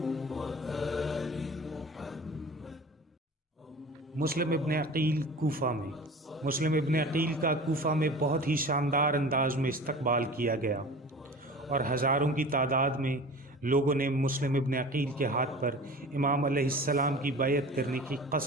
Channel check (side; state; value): both; normal; correlation 0.39